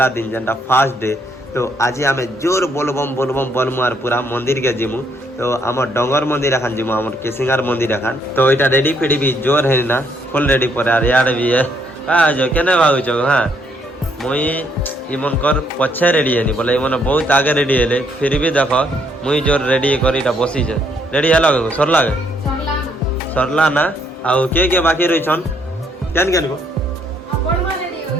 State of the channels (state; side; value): normal; both; correlation 0.70